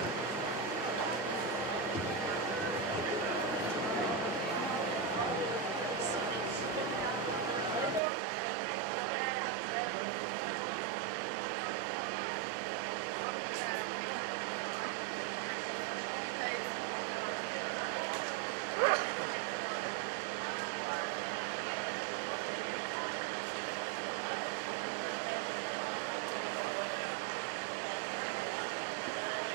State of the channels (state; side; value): drops out; left; at 8.0 s